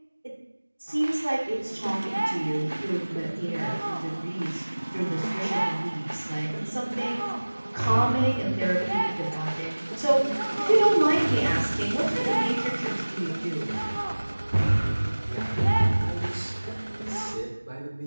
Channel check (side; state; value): both; inverted; correlation -1.00